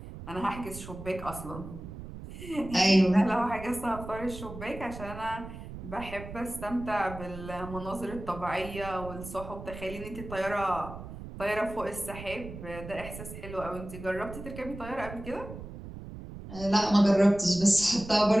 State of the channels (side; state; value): right; noise; rumble, 12 dB below the sound